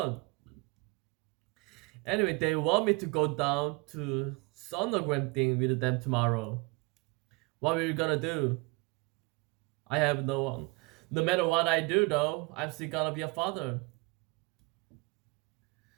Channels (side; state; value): left; quieter; 27.8 dB